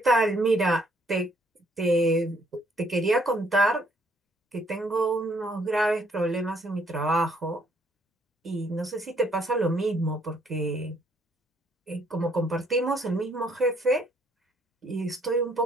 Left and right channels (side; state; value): both; normal; correlation 0.67